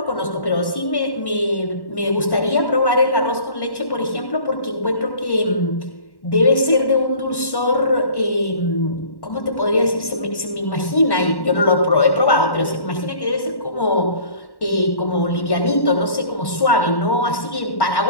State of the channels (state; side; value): late; right; 1.1 ms